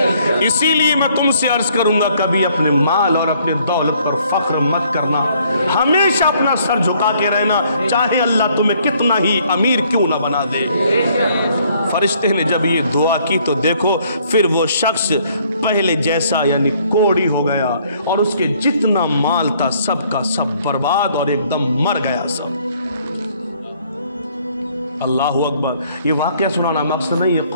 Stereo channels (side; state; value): both; inverted; correlation -0.64